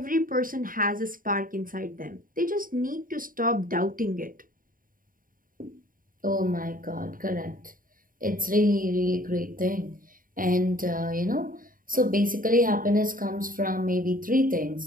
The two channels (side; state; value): left; late; 0.40 ms